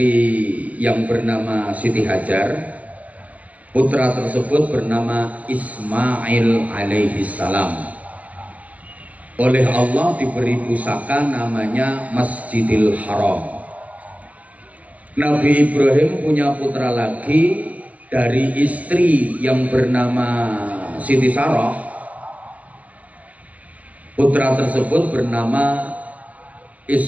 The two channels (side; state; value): left; late; 0.071 ms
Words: yang bernama Siti Hajar. Putra tersebut bernama Ismail alaihi salam. Oleh Allah diberi pusaka namanya Masjidil Haram. Nabi Ibrahim punya putra lagi dari istri yang bernama Siti Sarah. Putra tersebut bernama